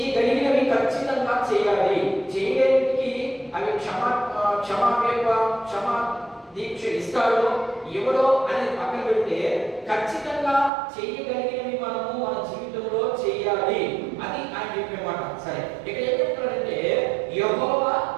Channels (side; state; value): left; drops out; at 10.7 s